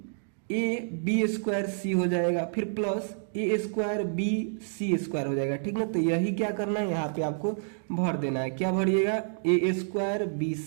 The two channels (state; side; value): silent; left; digital silence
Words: B square C हो जाएगा, फिर plus a square B C square हो जाएगा, ठीक ना। तो यही क्या करना है, यहाँ पे आपको भर देना है। क्या भरिएगा, a square B